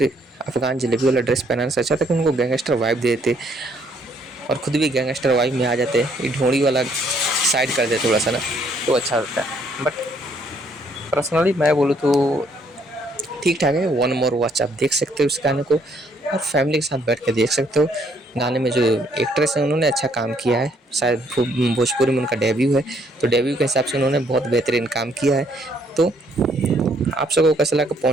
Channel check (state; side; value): normal; both; correlation 0.67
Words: अफगान जलेबी वाला ड्रेस पहनाने से अच्छा था कि उनको गैंगस्टर वाइब दे देते और खुद भी गैंगस्टर वाइब में आ जाते। ये ढोंड़ी वाला साइड कर दे थोड़ा सा ना, तो अच्छा होता है। बट पर्सनली मैं बोलूँ तो ठीक ठाक है। वन मोर वॉच आप देख सकते हो इस गाने को और फैमिली के साथ बैठ के देख सकते हो। गाने में जो एक्ट्रेस हैं उन्होंने अच्छा काम किया है, शायद भोजपुरी में उनका डेब्यू है, तो डेब्यू के हिसाब से उन्होंने बहुत बेहतरीन काम किया है। तो आप सबको कैसा लगा?